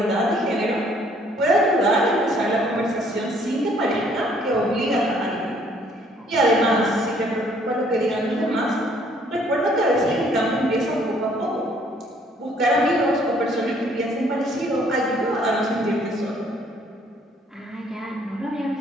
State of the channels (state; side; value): normal; both; correlation 0.62